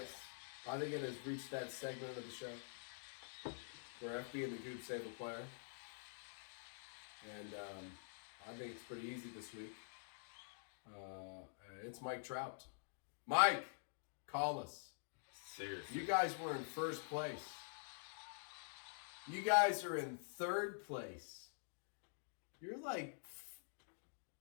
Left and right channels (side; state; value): right; silent; digital silence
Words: think it has reached that segment of the show where FB and the Goob save a player. And I think it's pretty easy this week. It's Mike Trout. Mike, call us. Seriously. You guys were in first place. You guys are in third place. You're like,